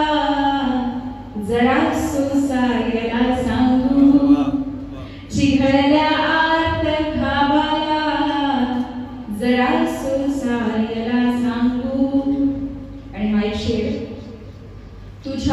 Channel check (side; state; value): both; identical; correlation 1.00